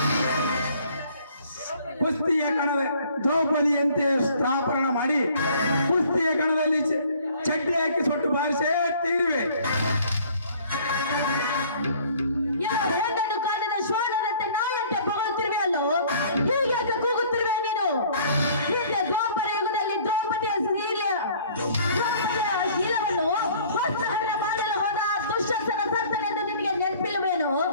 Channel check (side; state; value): both; inverted; correlation -0.55